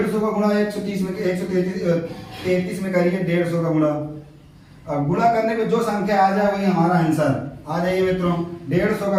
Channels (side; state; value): both; identical; correlation 1.00